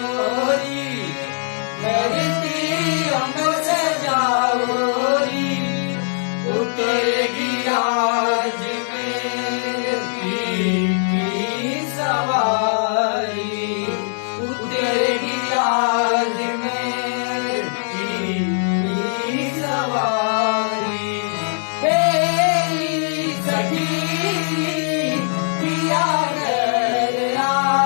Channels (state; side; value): silent; right; digital silence